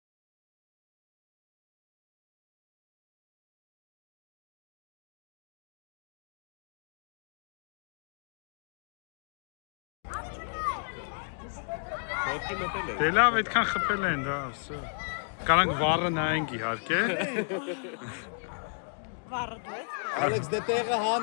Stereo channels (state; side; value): silent; right; digital silence